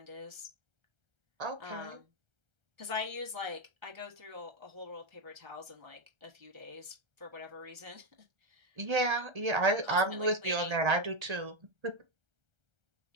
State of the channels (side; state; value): left; late; 1.3 ms